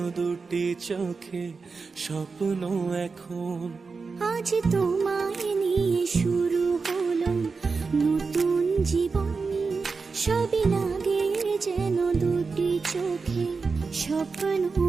দুটি চোখে স্বপ্ন এখন। আজ তোমায় নিয়ে শুরু হলো নতুন জীবন, সবই লাগে যেন দুটি চোখে স্বপ্ন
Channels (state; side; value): quieter; left; 4.6 dB